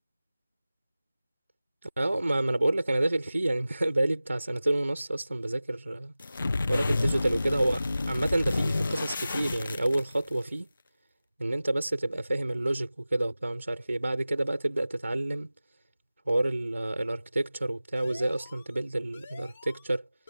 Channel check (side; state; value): both; inverted; correlation -0.96